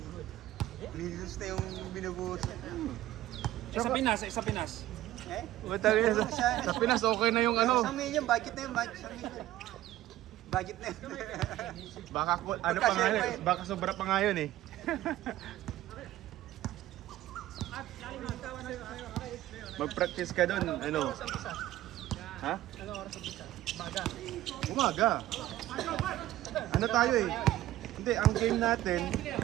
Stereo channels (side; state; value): left; quieter; 14.9 dB